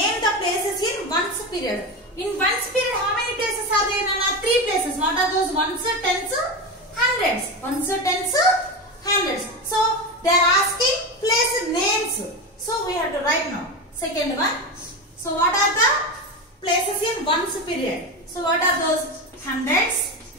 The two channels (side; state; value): both; normal; correlation 0.19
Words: the places in ones period. In ones period, how many places are there? Nana? 3 places. What are those? Ones, tens, hundreds. Ones, tens, hundreds. So they are asking place names. So we have to write now. Second one. So what are the places in ones period? So what are those? Hundreds.